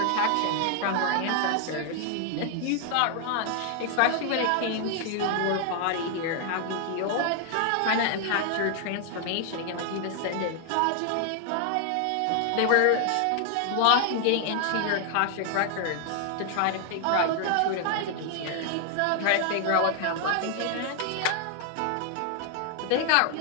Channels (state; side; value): different; both; correlation 0.00